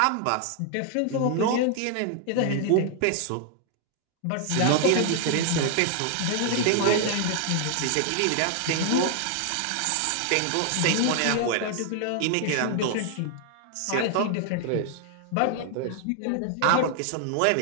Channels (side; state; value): both; different; correlation 0.00